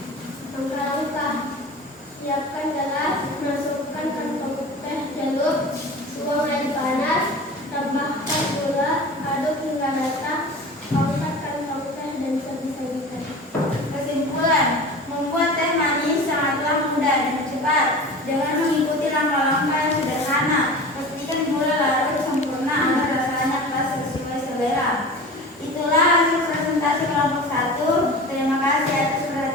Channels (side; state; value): both; normal; correlation 0.36